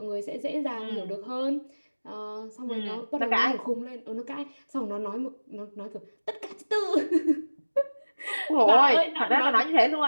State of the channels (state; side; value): inverted; both; correlation -1.00